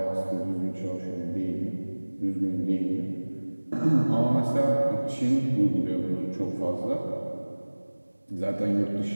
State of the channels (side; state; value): both; inverted; correlation -1.00